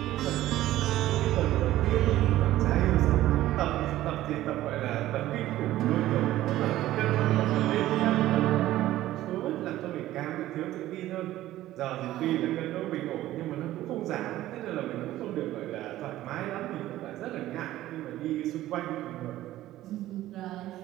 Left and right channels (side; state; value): left; quieter; 14.8 dB